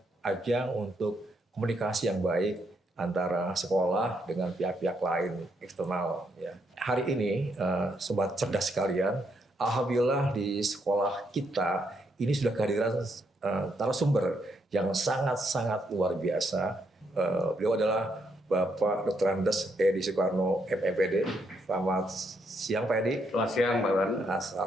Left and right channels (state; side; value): normal; both; correlation 0.76